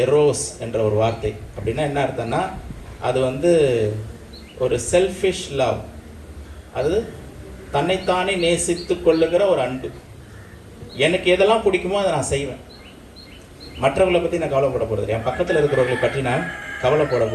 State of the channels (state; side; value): identical; both; correlation 1.00